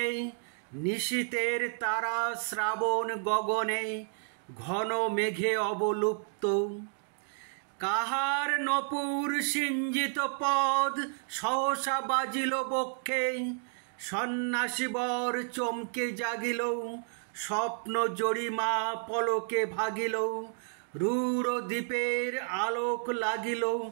নিশীথের তারা শ্রাবণ গগনে, ঘন মেঘে অবলুপ্ত। কাহার নপুর সিঞ্জিত পদ সহসা বাজিল বক্ষে, সন্ন্যাসী বর চমকে জাগিল, স্বপ্ন জরিমা পলকে ভাগিল, রূঢ় দ্বীপের আলোক লাগিল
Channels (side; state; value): left; silent; 57 dB below the other